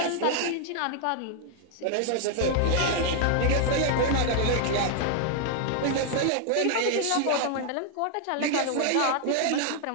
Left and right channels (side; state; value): both; different; correlation 0.00